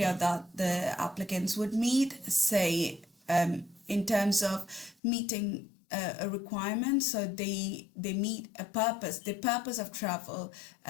that the applicants would meet, say, in terms of meeting a requirement. So they meet a purpose. The purpose of travel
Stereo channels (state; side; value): drops out; right; at 5.0 s